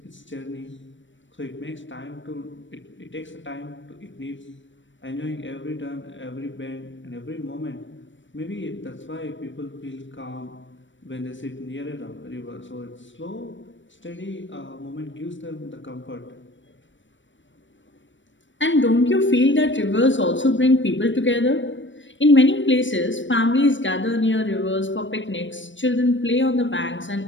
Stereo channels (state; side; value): late; right; 0.55 ms